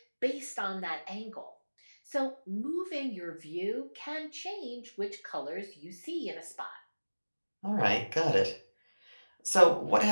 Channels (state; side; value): inverted; both; correlation -1.00